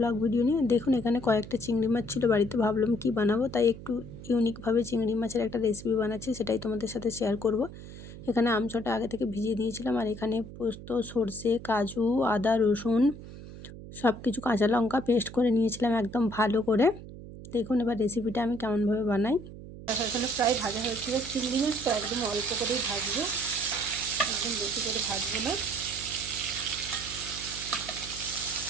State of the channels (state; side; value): noise; right; hum, 14 dB below the sound